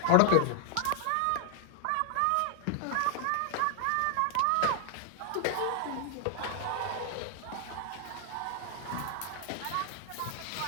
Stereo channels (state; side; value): different; both; correlation 0.00